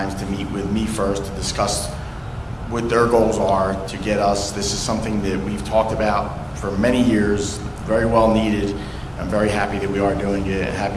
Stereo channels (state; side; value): identical; both; correlation 1.00